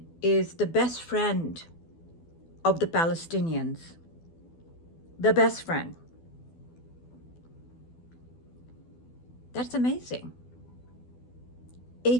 is the best friend of the Palestinians. The best friend. That's amazing.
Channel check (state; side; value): late; right; 12 ms